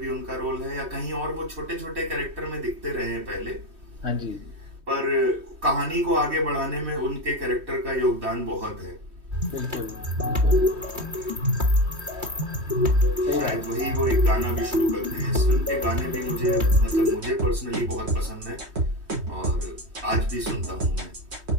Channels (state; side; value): late; left; 3.1 ms